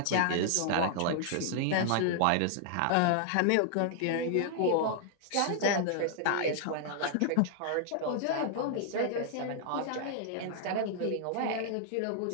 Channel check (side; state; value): both; different; correlation -0.01